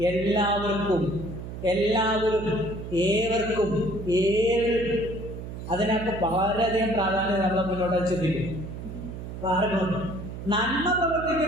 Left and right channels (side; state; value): right; noise; hum, 9 dB below the sound